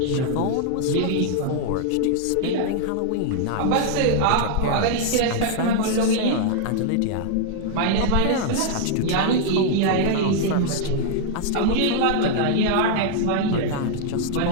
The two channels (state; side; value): different; both; correlation 0.00